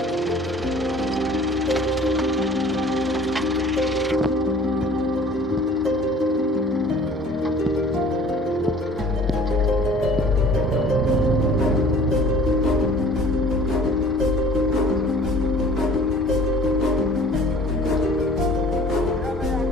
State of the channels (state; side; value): normal; both; correlation 0.50